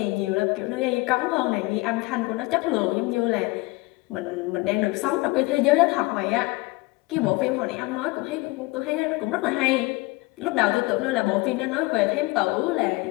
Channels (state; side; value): quieter; right; 23.1 dB